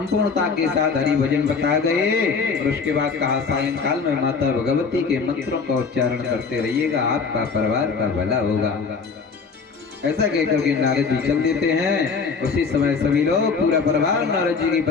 के साथ हरि भजन बता गए और उसके बाद कहा सायंकाल में माता भगवती के मंत्रों का उच्चारण करते रहिएगा, आपका परिवार का भला होगा। ऐसा कहकर के नारद जी चल देते हैं। उसी समय सभी लोग पूरा परिवार नारद जी की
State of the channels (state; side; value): quieter; right; 5.1 dB